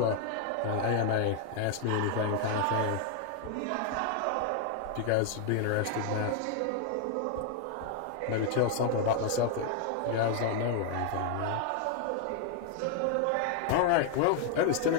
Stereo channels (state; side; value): different; both; correlation 0.00